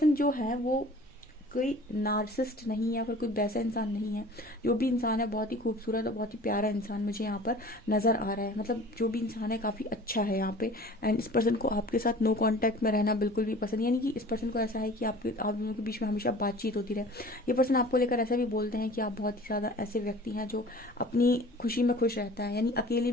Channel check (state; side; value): normal; both; correlation 0.44